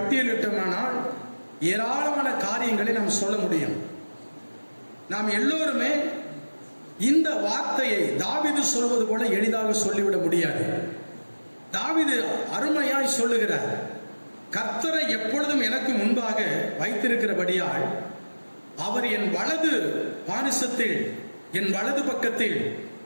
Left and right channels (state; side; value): inverted; both; correlation -1.00